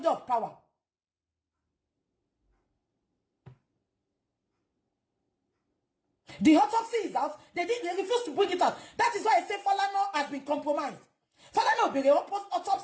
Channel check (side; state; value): both; identical; correlation 1.00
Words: of power. The autopsy is out. They refuse to bring it out. That is why I say Falana has been compromised. Falana be the